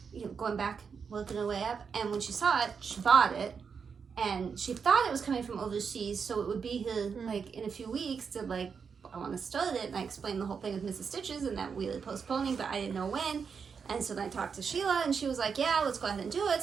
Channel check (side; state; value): left; quieter; 6.1 dB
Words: going back, working her way up. And when she saw it, she bought it. And she thought it was coming from overseas, so it would be here like in a few weeks to like, I want to start it. And I explained the whole thing with Mrs. Stitches and that we were postponing, but I didn't know when. And so then I talked to Sheila, and she was like, yeah, let's go ahead and do it.